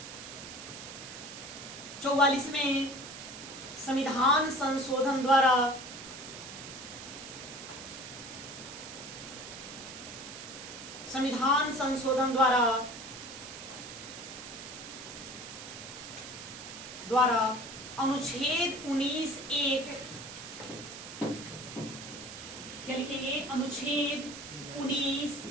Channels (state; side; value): noise; right; hiss, 11 dB below the sound